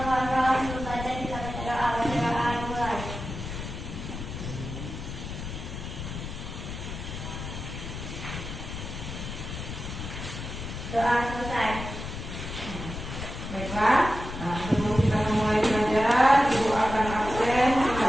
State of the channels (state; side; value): noise; left; rumble, 7 dB below the sound